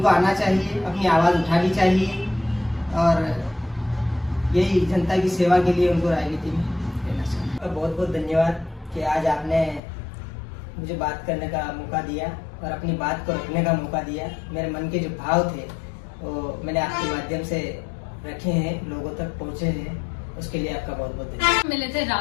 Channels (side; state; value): right; drops out; at 9.8 s